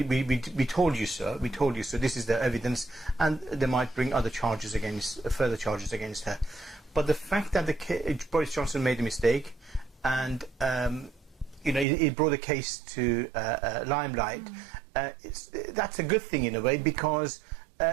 told you so, this is the evidence, and they might bring other charges further charges against her. But the fact that Boris Johnson made a mistake, and it brought the case to limelight. That's a good thing in a way, because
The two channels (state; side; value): drops out; left; at 11.9 s